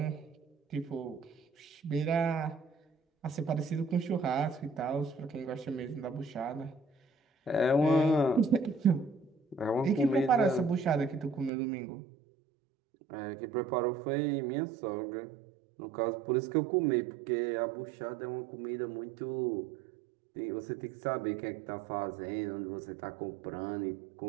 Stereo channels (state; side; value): drops out; left; at 11.5 s